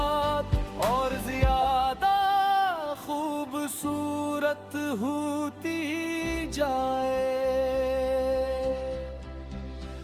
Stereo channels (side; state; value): both; identical; correlation 1.00